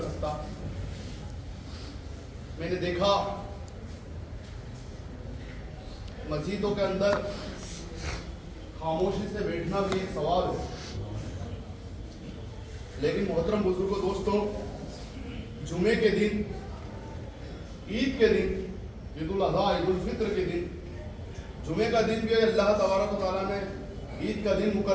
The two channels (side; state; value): both; identical; correlation 1.00